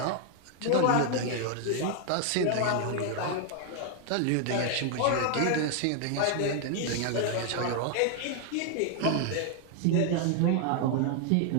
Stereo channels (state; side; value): different; both; correlation 0.00